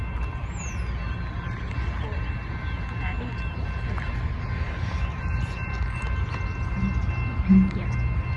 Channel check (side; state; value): both; identical; correlation 1.00